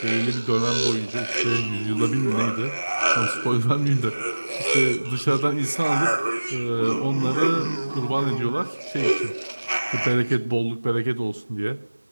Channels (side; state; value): both; inverted; correlation -1.00